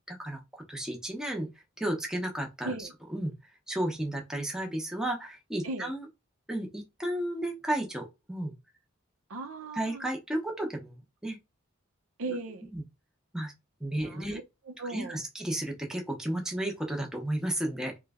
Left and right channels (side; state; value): both; normal; correlation 0.76